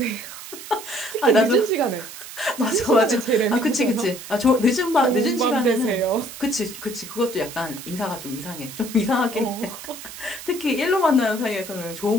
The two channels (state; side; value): noise; right; hiss, 13 dB below the sound